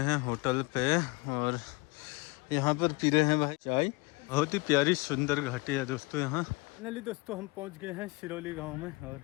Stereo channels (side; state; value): right; quieter; 26.1 dB